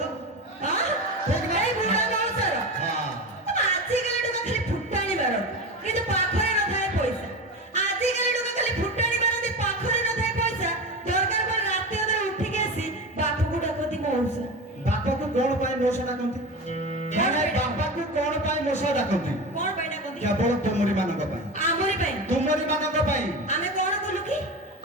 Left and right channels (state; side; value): normal; both; correlation 0.25